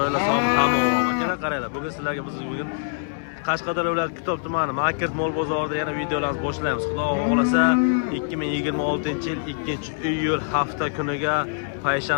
sog' tamom. Akalar qaranglar, bugun sizlarga bugun Qashqadaryo viloyati Kitob tumani Market Mol bozorida yana videolarimizni boshlaymiz. Xudo xolasa 2026-yil 2-iyul hafta kuniga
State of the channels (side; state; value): right; silent; digital silence